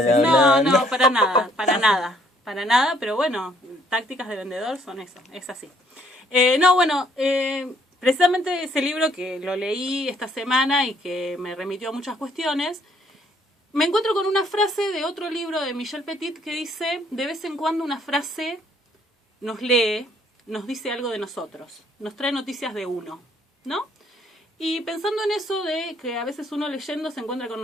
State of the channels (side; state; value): both; normal; correlation 0.65